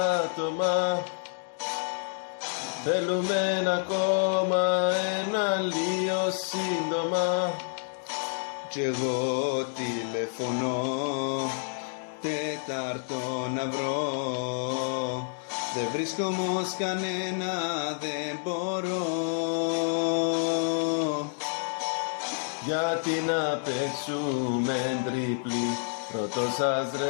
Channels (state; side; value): silent; right; digital silence